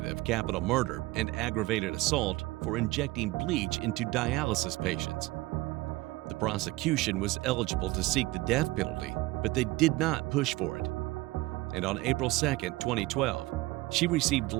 of capital murder and aggravated assault for injecting bleach into dialysis patients. The prosecution was eligible to seek the death penalty, but they did not push for it. And on April 2, 2012, she received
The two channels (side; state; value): left; quieter; 20.1 dB